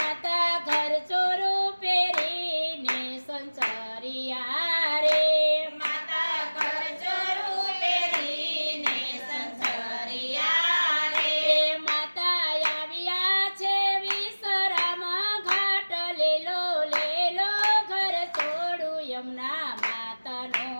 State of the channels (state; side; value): inverted; both; correlation -1.00